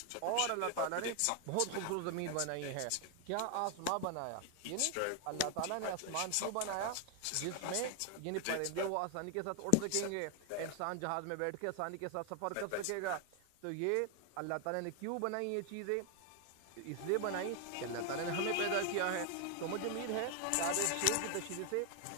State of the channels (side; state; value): both; different; correlation 0.00